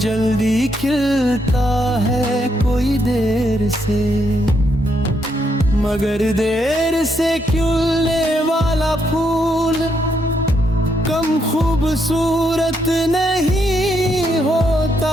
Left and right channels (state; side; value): normal; both; correlation 0.77